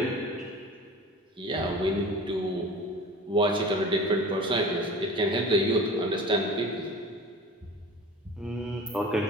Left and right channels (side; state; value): both; normal; correlation 0.38